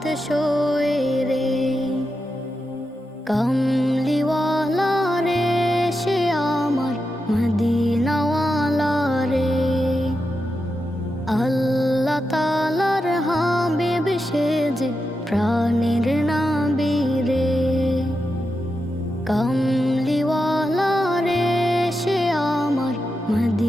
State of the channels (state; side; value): normal; both; correlation 0.88